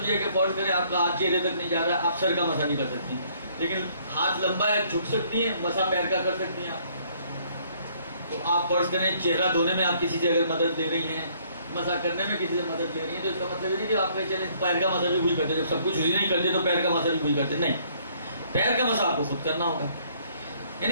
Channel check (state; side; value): inverted; both; correlation -0.63